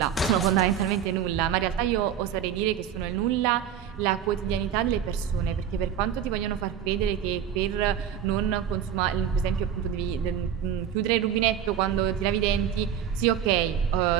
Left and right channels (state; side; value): quieter; left; 9.1 dB